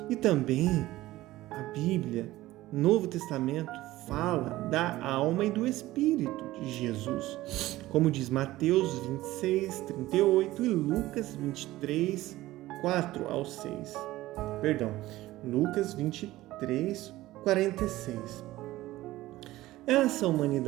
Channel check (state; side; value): quieter; left; 16.8 dB